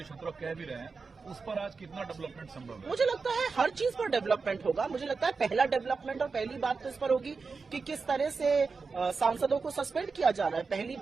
क्षेत्र कह भी रहे हैं, उस पर आज कितना डेवलपमेंट संभव है? मुझे लगता है हर चीज पर डेवलपमेंट होगा। मुझे लगता है पहला डेवलपमेंट और पहली बात तो इस पर होगी कि किस तरह से सांसदों को सस्पेंड किया जा रहा है। पहली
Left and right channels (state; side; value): quieter; left; 4.6 dB